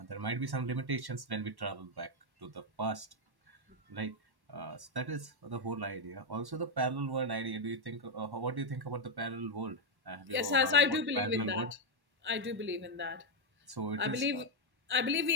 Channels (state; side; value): late; left; 1.1 ms